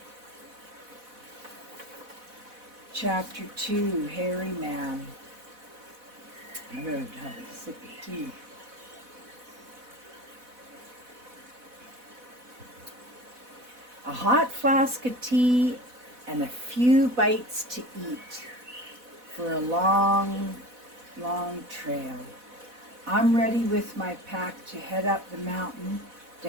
Chapter 2, Hairy Man. I better have a sip of tea. A hot flask of tea and a few bites to eat for a long, long trail. I'm ready with my pack to head up the mountain to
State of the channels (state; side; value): late; left; 4.1 ms